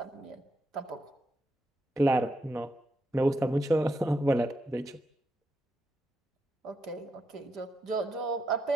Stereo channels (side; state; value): both; normal; correlation 0.83